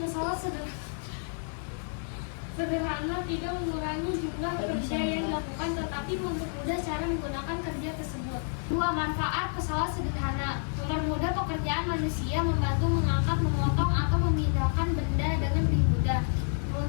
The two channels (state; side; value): silent; right; 58 dB below the other